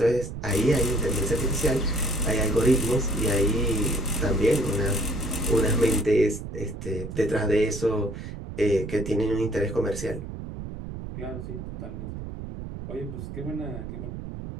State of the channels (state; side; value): noise; right; rumble, 9 dB below the sound